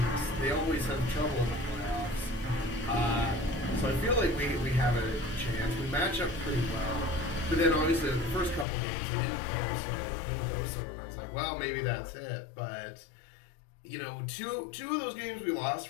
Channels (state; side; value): drops out; right; at 8.7 s